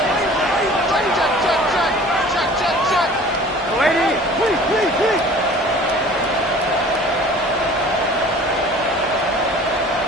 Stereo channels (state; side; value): normal; both; correlation 0.46